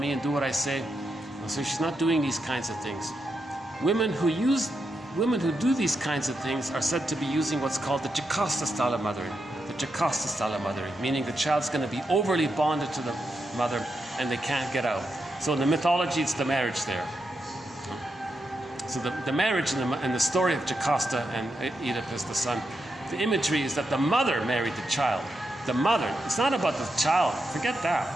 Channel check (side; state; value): both; normal; correlation 0.85